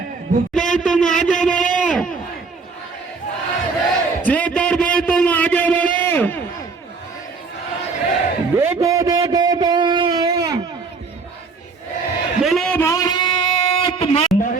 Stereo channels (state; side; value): quieter; left; 4.6 dB